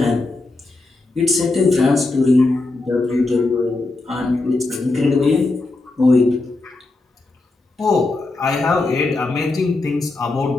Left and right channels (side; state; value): right; quieter; 3.2 dB